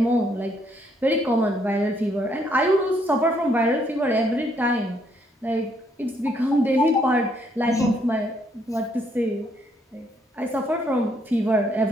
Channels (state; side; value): normal; both; correlation 0.71